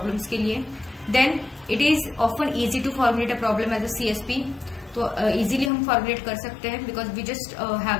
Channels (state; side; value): drops out; right; at 5.7 s